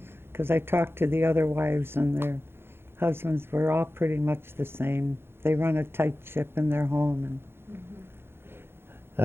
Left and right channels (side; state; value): left; late; 0.11 ms